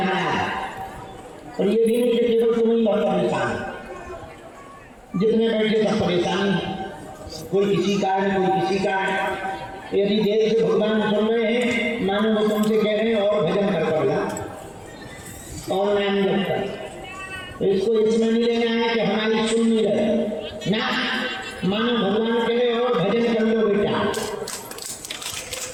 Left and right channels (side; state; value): both; identical; correlation 1.00